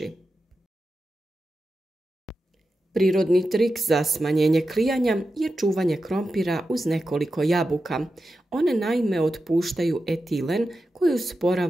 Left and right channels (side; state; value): both; normal; correlation 0.91